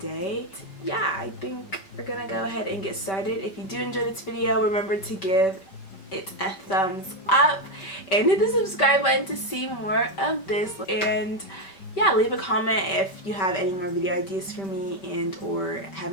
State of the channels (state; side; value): late; right; 5.2 ms